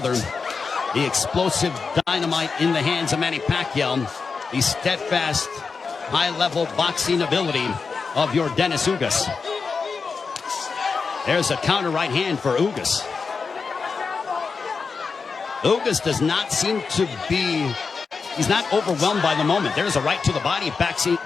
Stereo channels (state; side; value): quieter; right; 5.0 dB